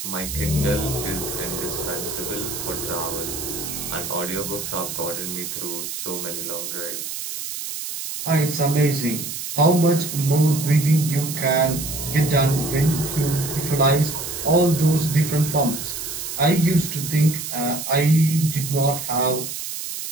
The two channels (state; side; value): noise; right; hiss, 6 dB below the sound